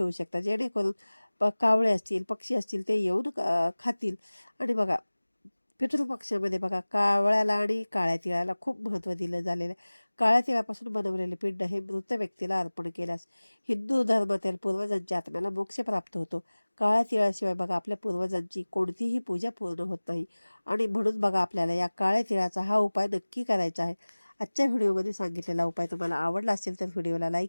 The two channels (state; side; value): inverted; both; correlation -1.00